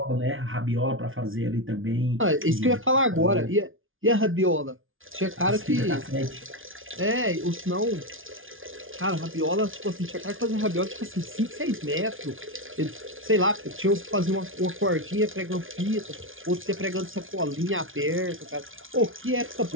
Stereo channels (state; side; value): late; left; 0.58 ms